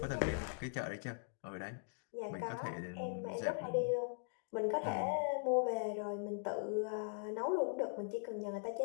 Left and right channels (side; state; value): right; silent; digital silence